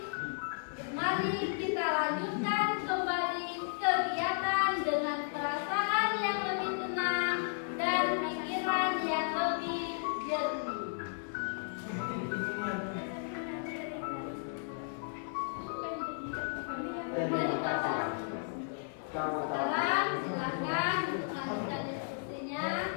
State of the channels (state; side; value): silent; right; digital silence